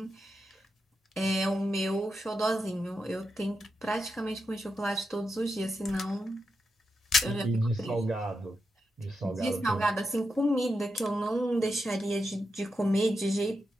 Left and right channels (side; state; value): both; normal; correlation 0.86